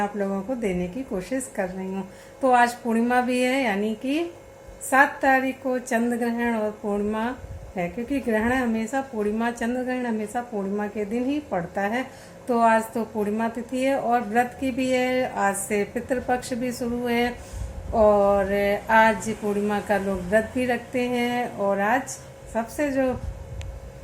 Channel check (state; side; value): identical; both; correlation 1.00